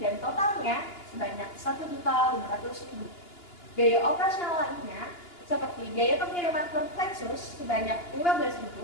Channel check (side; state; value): right; late; 2.9 ms